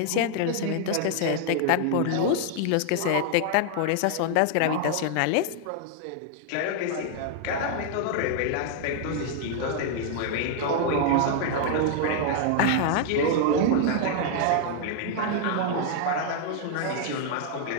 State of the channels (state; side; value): different; both; correlation 0.00